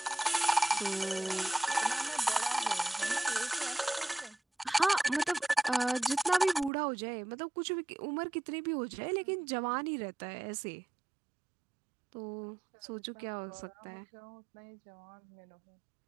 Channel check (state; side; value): drops out; left; at 6.7 s